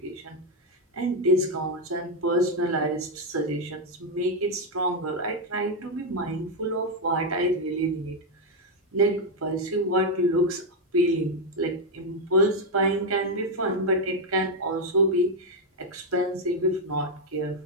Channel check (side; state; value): both; normal; correlation 0.03